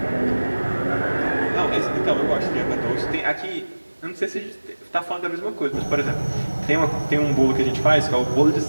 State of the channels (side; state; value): both; inverted; correlation -1.00